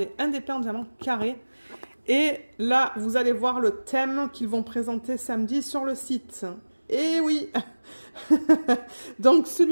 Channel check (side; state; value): both; inverted; correlation -1.00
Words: un DP en diamant carré. Et là, vous allez voir le thème qu'ils vont présenter samedi sur le site. Et oui. Donc